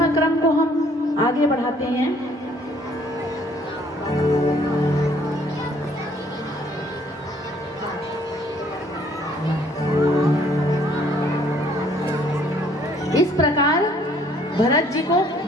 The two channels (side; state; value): both; normal; correlation 0.62